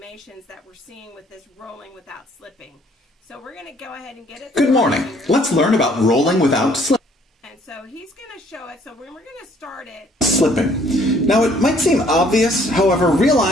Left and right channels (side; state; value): both; normal; correlation 0.61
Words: that we're seeing with this rolling without slipping. So we're going to go ahead and get it. Good morning. Let's learn about rolling without slipping. And so he's going to show it. So we're going to start it. Slipping. Now it might seem obvious, however,